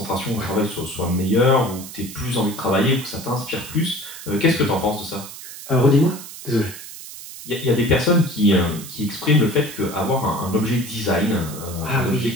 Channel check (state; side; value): noise; right; hiss, 13 dB below the sound